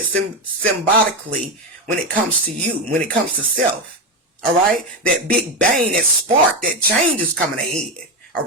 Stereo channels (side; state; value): both; normal; correlation 0.13